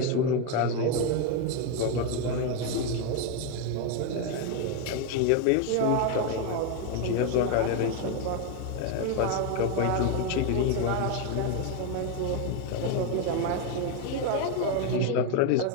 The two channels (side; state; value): both; different; correlation 0.02